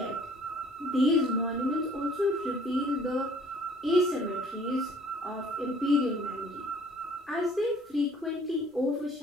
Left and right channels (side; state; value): both; normal; correlation 0.56